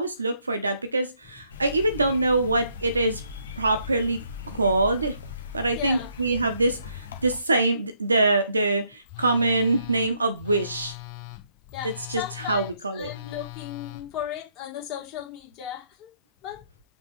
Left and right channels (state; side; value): inverted; both; correlation -0.72